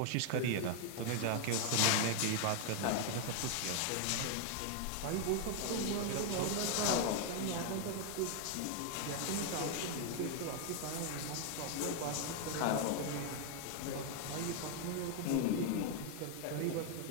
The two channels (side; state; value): both; different; correlation 0.00